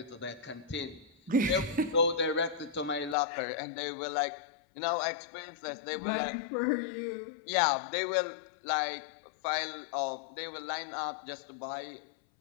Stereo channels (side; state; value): right; drops out; at 3.2 s